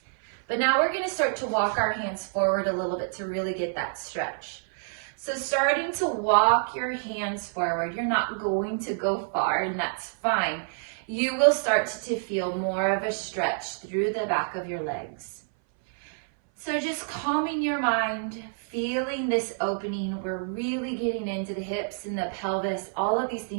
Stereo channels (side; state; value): left; silent; 58 dB below the other